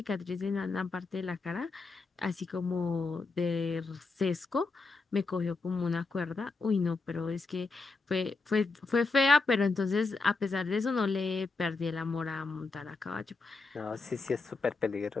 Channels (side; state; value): right; quieter; 3.9 dB